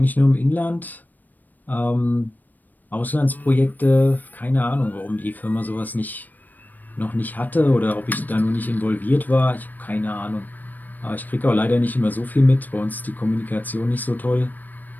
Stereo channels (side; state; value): right; late; 0.087 ms